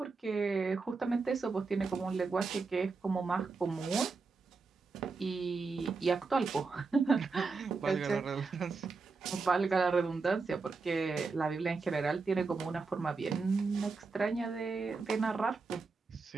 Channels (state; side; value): quieter; left; 4.4 dB